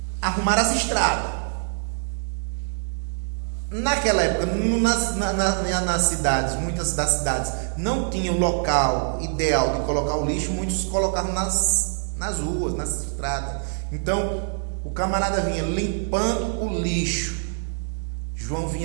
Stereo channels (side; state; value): left; silent; digital silence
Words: arrumar as estradas. Naquela época, nas cidades, muitas das cidades não tinham local ideal de colocar o lixo, muitos colocavam nas ruas, nas estradas. Então, o camarada vinha limpando o lixo. João